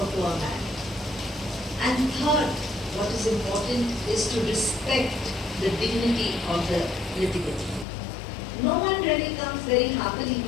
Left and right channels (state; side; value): drops out; right; at 7.9 s